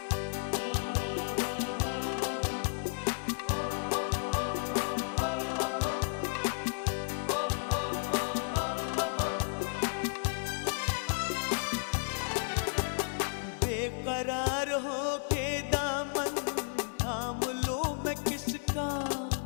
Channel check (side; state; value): right; silent; 56 dB below the other